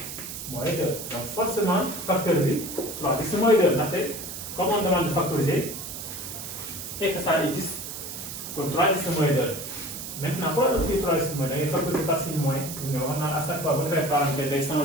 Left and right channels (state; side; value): noise; right; hiss, 8 dB below the sound